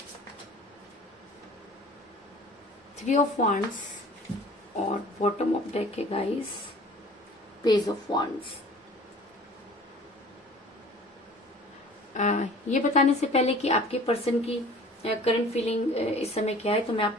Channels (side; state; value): both; normal; correlation 0.47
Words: Three of Wands, और bottom of deck है guys page of wands. ये बताने से पहले कि आपके person की current feeling इस समय क्या है, तो मैं